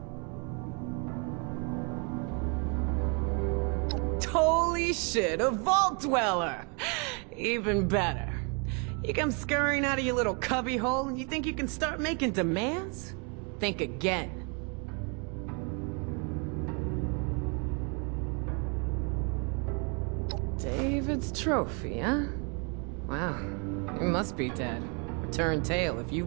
Holy shit, a vault dweller! Even better. You come scurrying out of your little cubby hole and you think you can start making demands? Think again. David's trophy, huh? Wow, you must be dead. Return tail if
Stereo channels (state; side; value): quieter; left; 35.2 dB